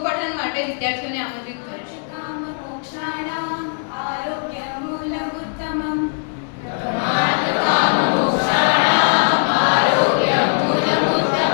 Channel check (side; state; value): right; silent; 66 dB below the other